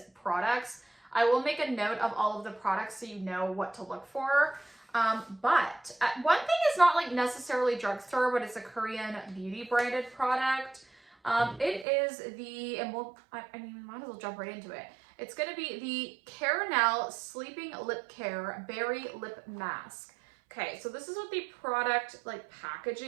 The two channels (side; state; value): left; drops out; at 11.9 s